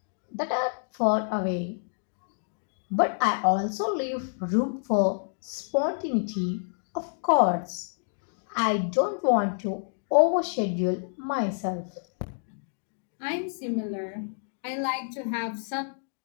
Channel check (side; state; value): right; silent; digital silence